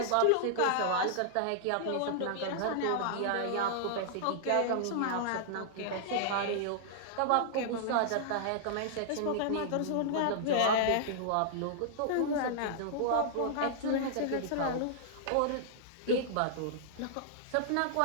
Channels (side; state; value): both; different; correlation -0.01